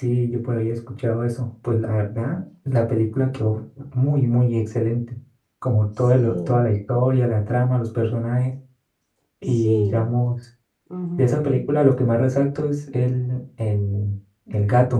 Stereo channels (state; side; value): identical; both; correlation 1.00